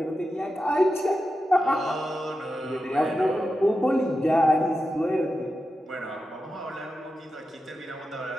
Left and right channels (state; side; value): normal; both; correlation 0.90